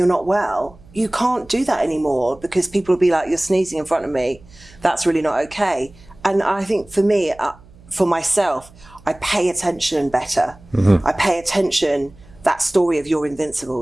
not well. You can't do that anymore because people will be like, you're sneezing in front of me. That's really not okay. And I think for me, for myself, I pay attention better. I pay attention. That story of you're invincible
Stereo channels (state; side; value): noise; right; hum, 24 dB below the sound